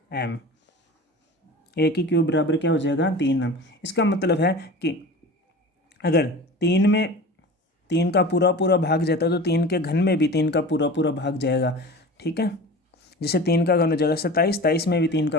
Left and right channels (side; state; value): both; normal; correlation 0.35